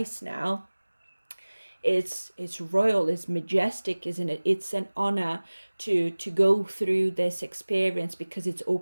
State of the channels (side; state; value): both; inverted; correlation -1.00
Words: now. It's royal, it's majestic, isn't it? It's an honor to go through this experience, because it's